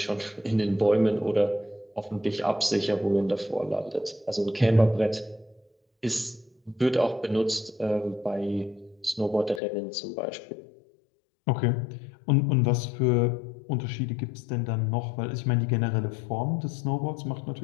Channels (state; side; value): drops out; right; at 9.6 s